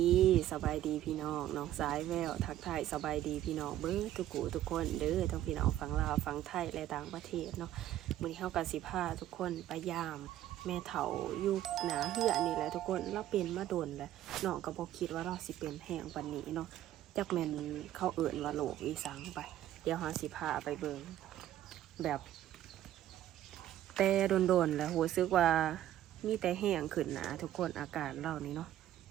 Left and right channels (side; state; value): left; quieter; 12.8 dB